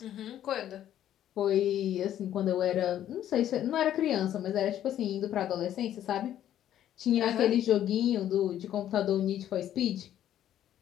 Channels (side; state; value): right; quieter; 11.4 dB